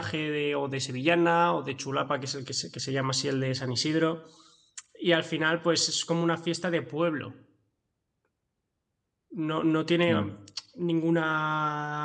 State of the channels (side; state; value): both; identical; correlation 1.00